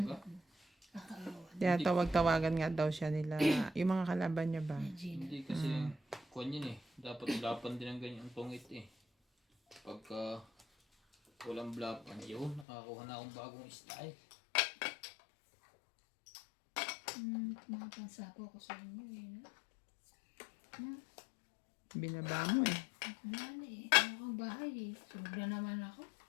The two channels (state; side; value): drops out; right; at 12.7 s